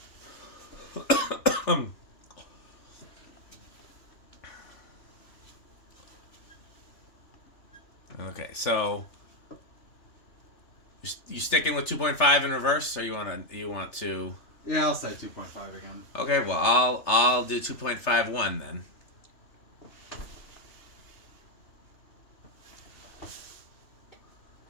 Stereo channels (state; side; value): late; right; 3.4 ms